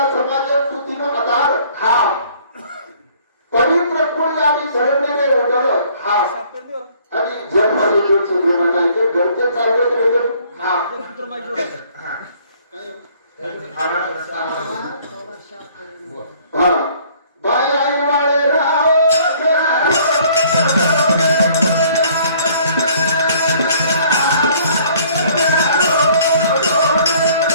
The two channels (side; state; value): both; inverted; correlation -0.58